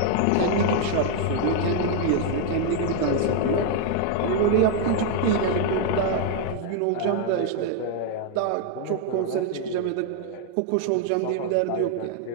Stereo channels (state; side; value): different; both; correlation 0.00